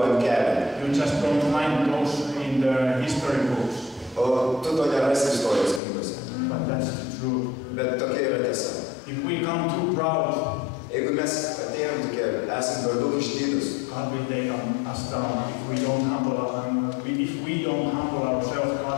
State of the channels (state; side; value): drops out; right; at 5.8 s